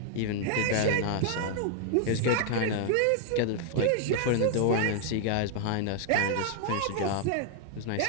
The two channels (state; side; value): different; both; correlation 0.00